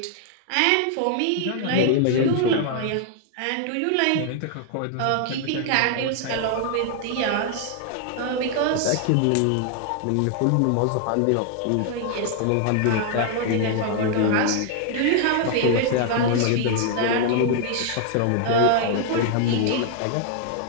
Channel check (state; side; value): different; both; correlation 0.00